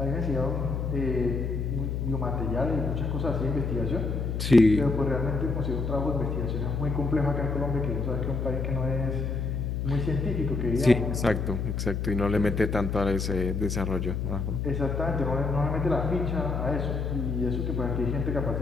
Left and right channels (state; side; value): noise; left; hum, 1 dB below the sound